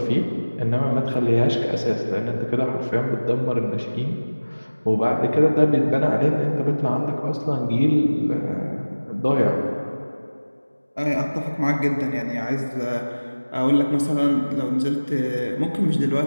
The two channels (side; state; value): both; inverted; correlation -1.00